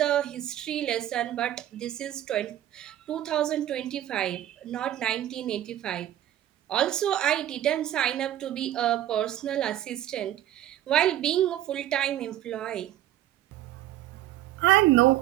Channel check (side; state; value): left; quieter; 12.8 dB